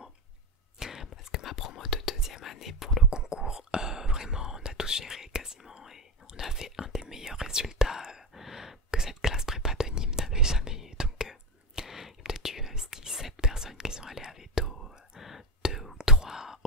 Parce que ma promo de deuxième année pour le concours, vraiment on a tout géré quasiment et on a fait un des meilleurs résultats que cette classe prépa de Nîmes n'avait jamais eu. Donc il y a peut-être eu 6-7 personnes qui sont allées à Veto, 2 ou 3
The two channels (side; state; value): both; normal; correlation 0.16